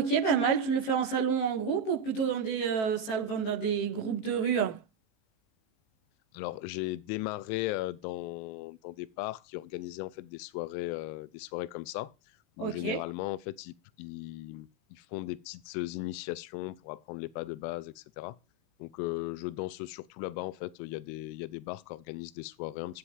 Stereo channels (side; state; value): right; late; 18 ms